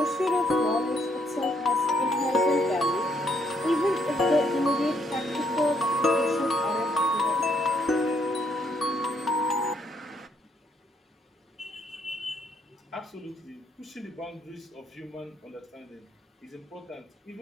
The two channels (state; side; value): normal; both; correlation 0.71